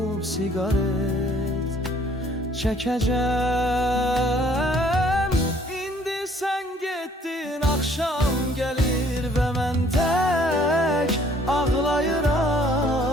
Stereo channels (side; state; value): both; normal; correlation 0.60